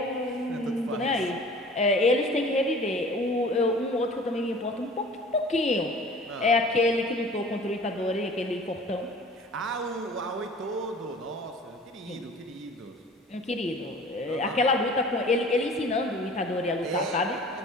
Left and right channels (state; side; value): normal; both; correlation 0.45